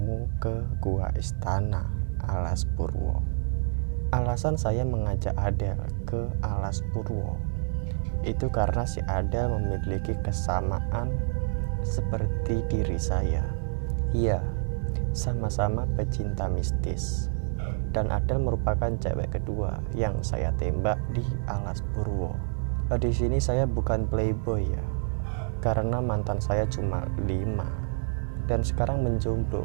ke Gua Istana Alas Purwo. Alasan saya mengajak Adel ke Alas Purwo itu karena si Adel memiliki kesamaan seperti diri saya. Iya, sama-sama pecinta mistis. Dan Adel merupakan cewek kedua yang saya tembak di Alas Purwo. Di sini saya bukan playboy ya, karena mantan saya cuma 5 dan sekarang menjomblo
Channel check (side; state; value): left; silent; digital silence